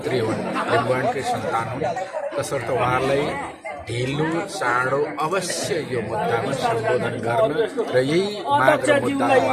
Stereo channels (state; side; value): identical; both; correlation 1.00